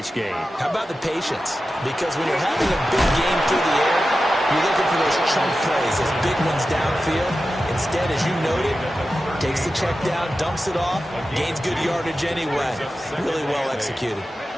game. How about the patience? Because when you're having a big game through the air, you're looking for those chunk plays, those big ones downfield. Instead, as you noted, takes the check down, dumps it off, gains good yardage anyway. Really well executed.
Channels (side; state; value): both; normal; correlation 0.93